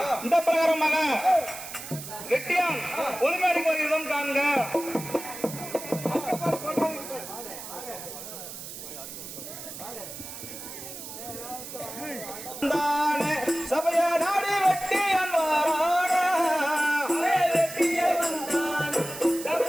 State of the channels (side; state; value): right; noise; hiss, 11 dB below the sound